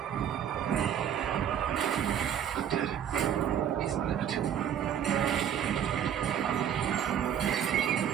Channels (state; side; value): quieter; left; 9.3 dB